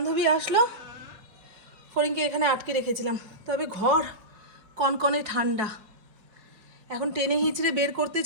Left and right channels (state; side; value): late; left; 4.7 ms